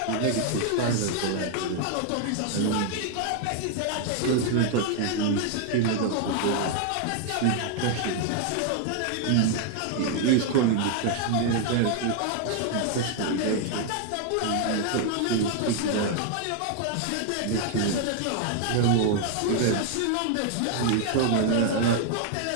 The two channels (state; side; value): different; both; correlation 0.00